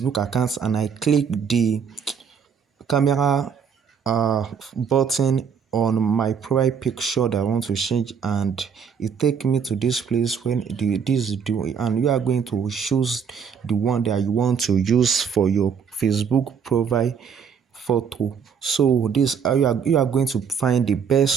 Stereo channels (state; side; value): quieter; left; 6.9 dB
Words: account and I click the camera button on my profile picture that I want to change, and it take me to this place when this do, and you are going to choose the one that you want to use for your Facebook profile photo. So this you are going to find the